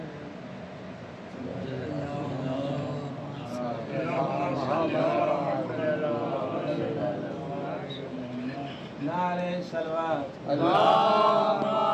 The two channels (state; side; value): identical; both; correlation 1.00